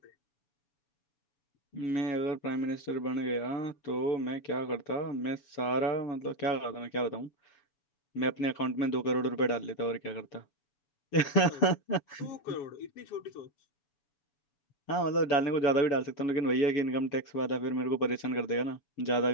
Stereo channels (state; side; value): late; right; 6.8 ms